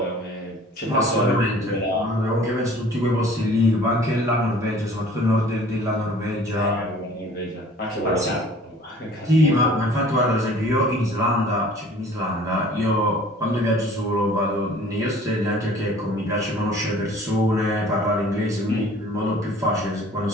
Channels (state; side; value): normal; both; correlation 0.49